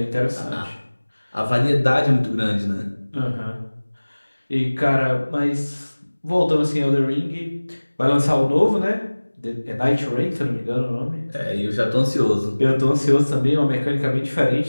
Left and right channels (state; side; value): inverted; both; correlation -1.00